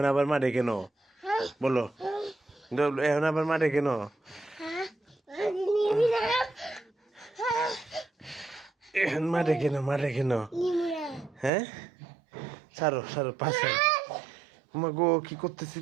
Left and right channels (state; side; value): drops out; left; at 11.5 s